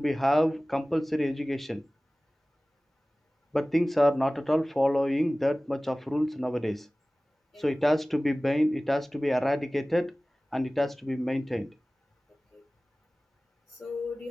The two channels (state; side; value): normal; both; correlation 0.98